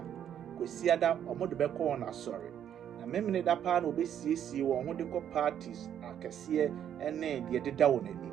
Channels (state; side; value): quieter; left; 9.7 dB